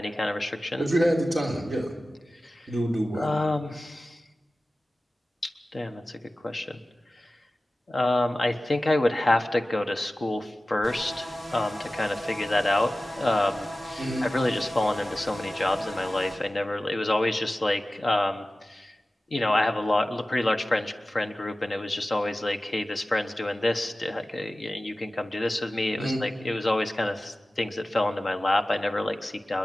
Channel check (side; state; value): both; normal; correlation 0.96